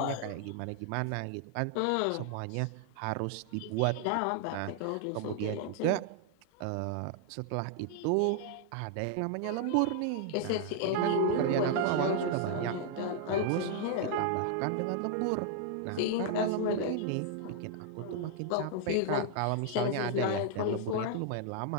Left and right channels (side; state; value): both; different; correlation 0.00